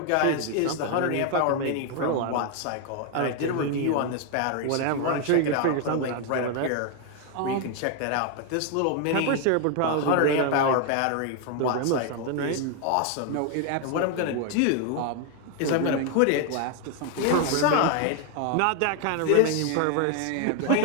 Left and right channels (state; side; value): different; both; correlation 0.01